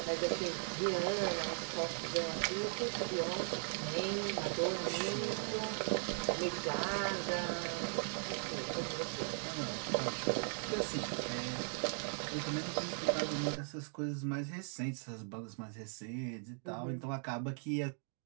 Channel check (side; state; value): left; silent; 52 dB below the other